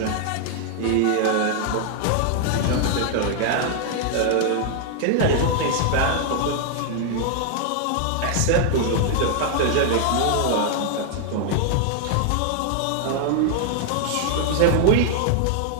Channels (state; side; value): different; both; correlation 0.00